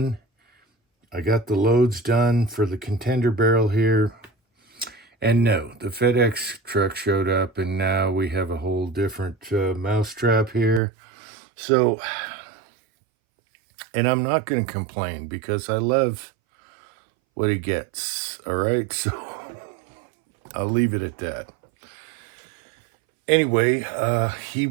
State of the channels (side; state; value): left; drops out; at 10.8 s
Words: I got the loads done for the contender barrel here. And no, the FedEx truck showed up, and now we have a whole different mousetrap here. So, and I'm not going to complain because I love what he gets. All right. So I'll leave it at that. Anyway, he